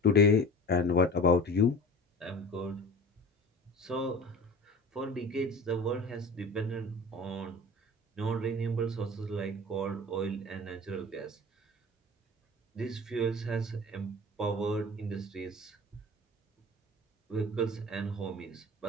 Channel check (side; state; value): both; normal; correlation 0.38